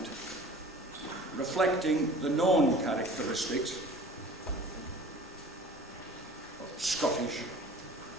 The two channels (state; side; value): normal; both; correlation 0.45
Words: reflecting the known characteristics of Scottish,